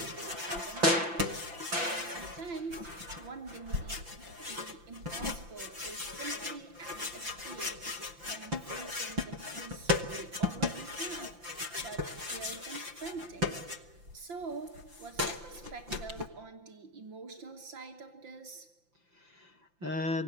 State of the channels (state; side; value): late; left; 5.8 ms